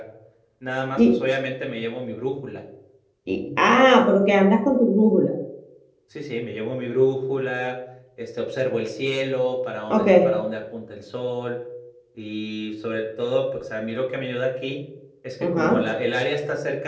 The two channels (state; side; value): identical; both; correlation 1.00